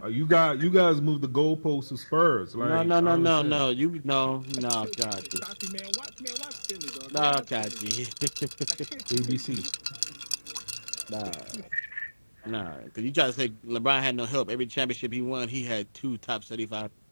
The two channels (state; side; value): inverted; both; correlation -1.00